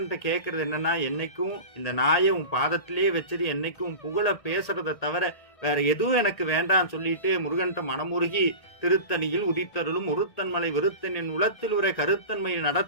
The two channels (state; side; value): late; right; 1.8 ms